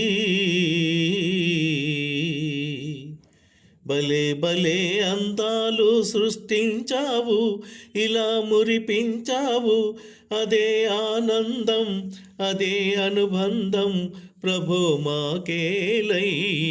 భలే భలే అందాలు సృష్టించావు, ఇలా మురిపించావు. అదే ఆనందం అదే అనుబంధం ప్రభో మాకేలయ్యవు.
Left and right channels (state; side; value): identical; both; correlation 1.00